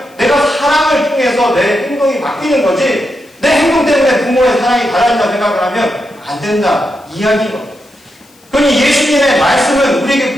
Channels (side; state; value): left; noise; hiss, 30 dB below the sound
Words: 내가 사랑을 통해서 내 행동이 바뀌는 거지, 내 행동 때문에 부모의 사랑이 달라진다 생각을 하면 안 된다 이야기인 겁니다. 그러니 예수님의 말씀은